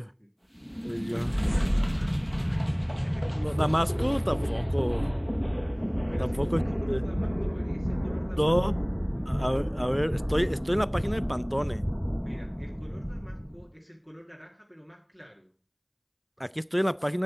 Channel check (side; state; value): both; identical; correlation 1.00